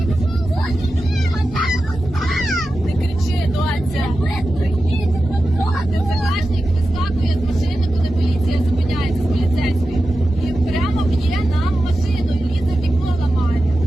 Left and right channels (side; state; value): both; normal; correlation 0.92